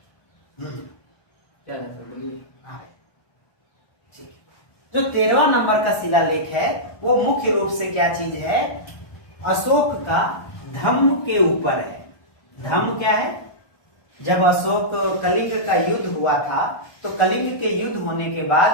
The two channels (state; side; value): late; right; 1.2 ms